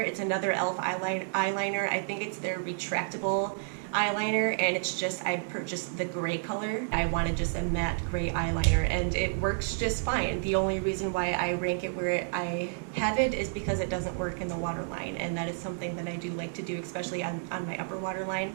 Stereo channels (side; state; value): left; silent; digital silence